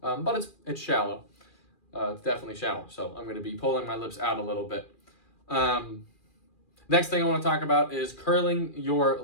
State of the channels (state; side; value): late; right; 2.4 ms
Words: but it's shallow. It's definitely shallow. So I'm going to be pulling my lips out a little bit. Next thing I want to talk about is curling your